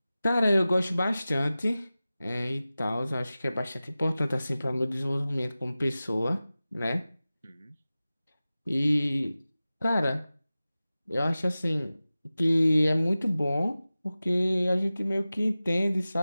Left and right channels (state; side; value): inverted; both; correlation -0.96